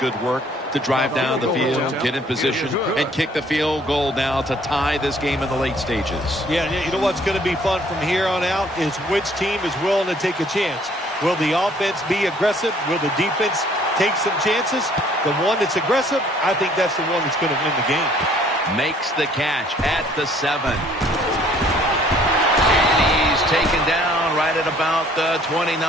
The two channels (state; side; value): normal; both; correlation 0.59